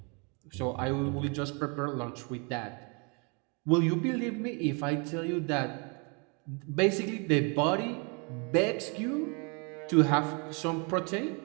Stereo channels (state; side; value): quieter; left; 33.7 dB